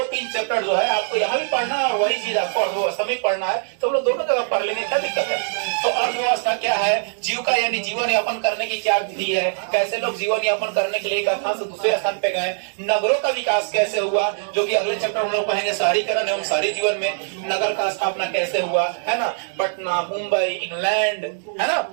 चैप्टर जो है आपको यहाँ भी पढ़ना है और वही चीज आपको अर्थव्यवस्था में पढ़ना है। तो हम लोग दोनों जगह पढ़ लेंगे, क्या दिक्कत है। तो अर्थव्यवस्था क्या है, जीविका यानी जीवन यापन करने की क्या विधि है, कैसे लोग जीवन यापन करने के लिए एक स्थान से दूसरे स्थान पे गए, नगरों का विकास कैसे हुआ, जो कि अगले चैप्टर हम लोग पढ़ेंगे, शहरीकरण एवं शहरी जीवन में नगर का स्थापना कैसे हुआ, है ना। पटना, मुंबई, इंग्लैंड, है ना,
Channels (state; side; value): silent; left; digital silence